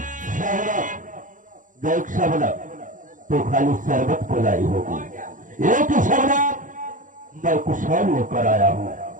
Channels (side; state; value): left; late; 0.38 ms